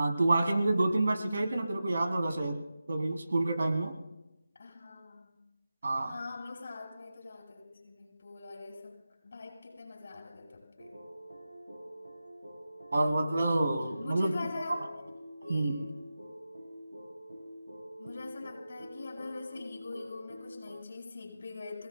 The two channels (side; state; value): both; inverted; correlation -0.92